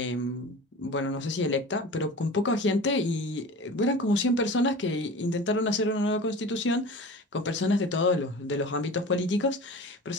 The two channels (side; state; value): both; normal; correlation 0.36